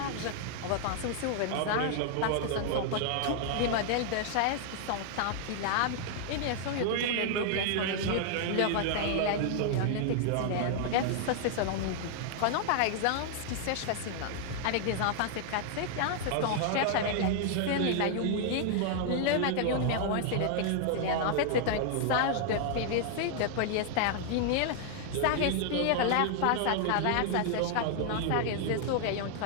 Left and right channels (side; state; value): both; different; correlation 0.00